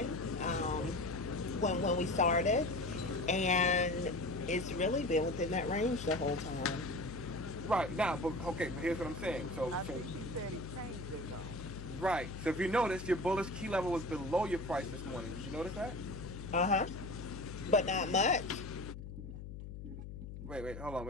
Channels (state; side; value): noise; left; hum, 10 dB below the sound